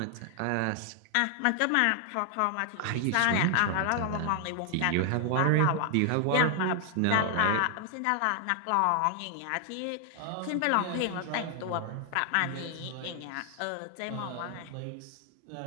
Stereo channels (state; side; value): different; both; correlation 0.00